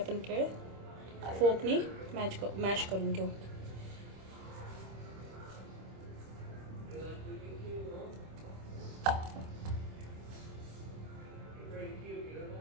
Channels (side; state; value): left; late; 26 ms